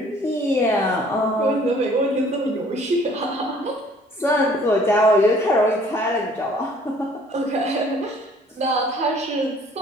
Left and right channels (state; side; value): normal; both; correlation 0.56